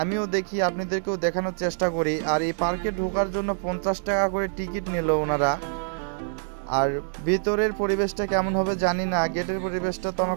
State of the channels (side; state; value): left; silent; digital silence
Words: আমিও দেখি, আপনাদেরকেও দেখানোর চেষ্টা করি। আর এই পার্কে ঢোকার জন্য 50 টাকা করে টিকিট নিল ওনারা। আর ভিতরের পরিবেশটা কেমন হবে জানি না, গেটের পরিবেশটা তো